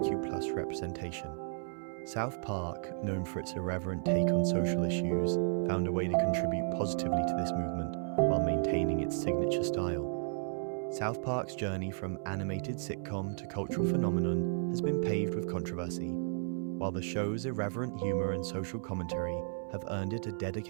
representation. South Park, known for its irreverent take on social issues, found a way to contribute positively to this movement while maintaining its signature style. South Park's journey from animated sitcom to cultural phenomenon has been paved with controversy. While the show's irreverent humor and social commentary have earned it a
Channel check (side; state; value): left; silent; 55 dB below the other